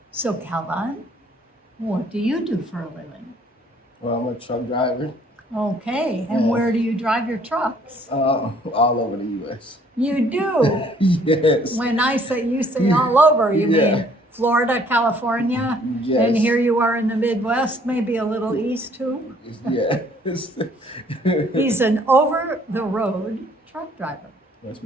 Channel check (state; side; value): normal; both; correlation 0.60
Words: So, Kalvon, what do you do for a living? Well, I'm a truck driver Okay, and Yeah. where do you drive your trucks? all over the U.S. You do. Yes. When I say you say all over, you Yeah. mean Florida, California, Yes. and here you are in the Midwest, maybe a little east too. Yes. He's an over-the-road truck driver. Yes,